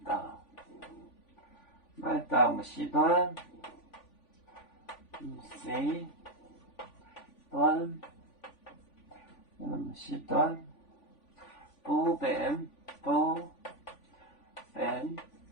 时段，时段。时段不变，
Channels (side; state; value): right; late; 3.5 ms